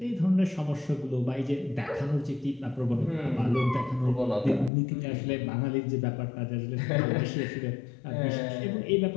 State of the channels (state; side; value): drops out; right; at 4.7 s